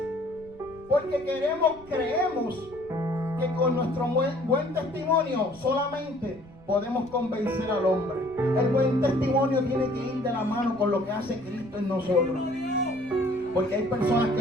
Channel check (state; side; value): noise; right; rumble, 22 dB below the sound